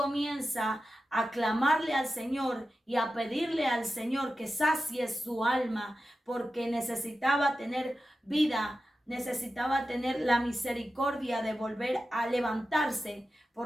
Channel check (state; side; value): normal; both; correlation 0.92